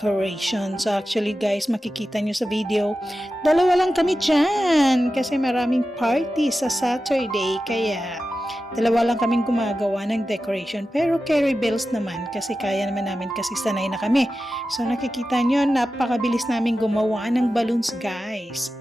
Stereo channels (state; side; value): normal; both; correlation 0.93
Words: So actually guys, makikita nyo sa video, dalawa lang kami dyan kasi maraming party sa Saturday. Kaya dalawa lang kaming gumagawa ng decoration. Pero carry bells naman kasi kaya naman namin kasi sanay na kami. So nakikita nyo, napakabilis namin gumawa ng balloons guys.